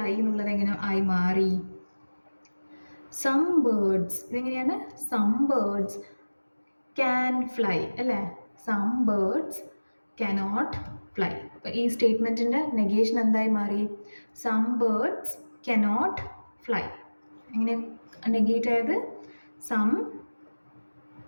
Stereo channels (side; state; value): both; inverted; correlation -1.00